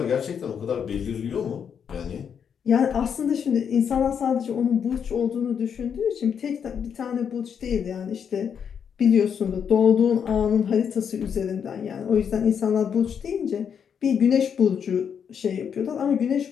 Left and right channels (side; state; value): right; quieter; 7.5 dB